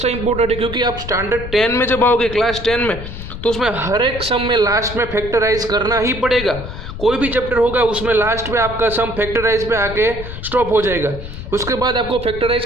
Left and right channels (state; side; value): noise; left; rumble, 9 dB below the sound